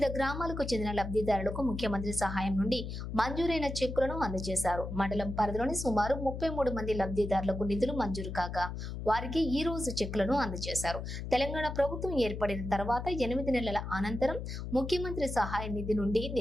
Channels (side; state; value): left; noise; hum, 6 dB below the sound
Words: గ్రామాలకు చెందిన లబ్ధిదారులకు ముఖ్యమంత్రి సహాయం నుండి మంజూరైన చెక్కులను అందజేశారు. మండలం పరిధిలోని సుమారు 33 మంది లబ్ధిదారులకు నిధులు మంజూరు కాగా వారికి ఈ రోజు చెక్కులను అందజేశారు. తెలంగాణ ప్రభుత్వం ఏర్పడిన తర్వాత 8 నెలల అనంతరం ముఖ్యమంత్రి సహాయ నిధి నుండి